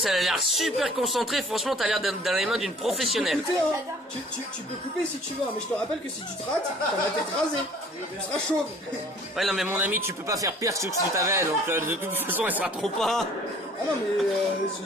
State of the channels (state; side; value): normal; both; correlation 0.52